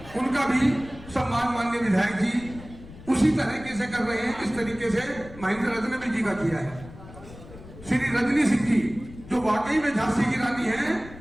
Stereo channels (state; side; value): noise; left; rumble, 17 dB below the sound